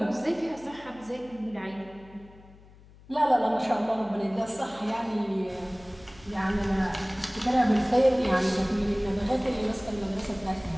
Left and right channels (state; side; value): noise; left; hum, 23 dB below the sound